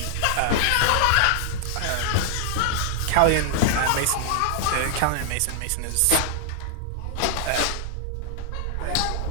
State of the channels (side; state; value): both; different; correlation -0.01